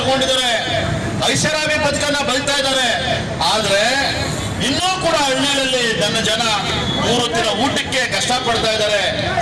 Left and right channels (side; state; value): both; identical; correlation 1.00